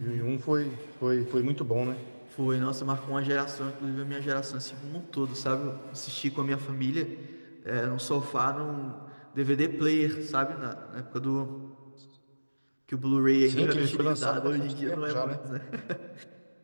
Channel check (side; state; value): both; inverted; correlation -1.00